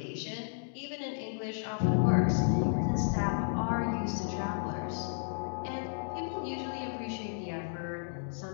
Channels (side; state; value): right; silent; digital silence